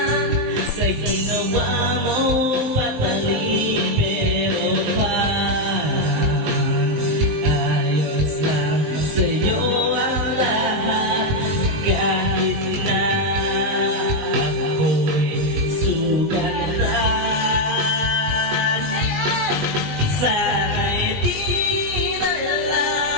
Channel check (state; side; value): late; left; 20 ms